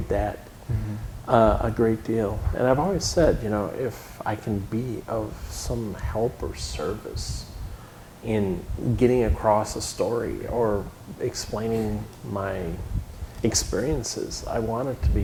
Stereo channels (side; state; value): both; identical; correlation 1.00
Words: that a great deal. And I've always said, you know, if I can be of some help or service in getting across a story or explaining my experiences, I want it to be